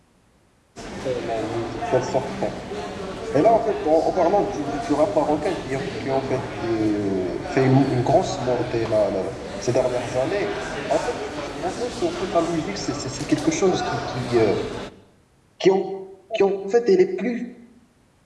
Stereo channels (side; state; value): both; identical; correlation 1.00